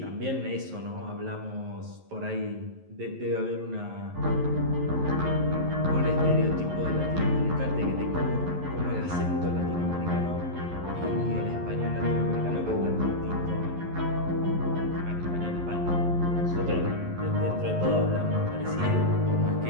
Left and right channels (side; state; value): left; late; 11 ms